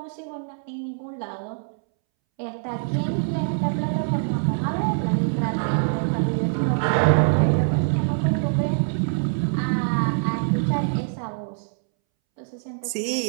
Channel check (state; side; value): silent; left; 63 dB below the other